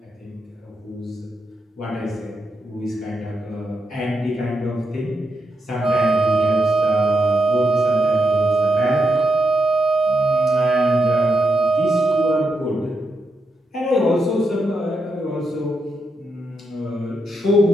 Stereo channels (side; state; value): both; normal; correlation 0.83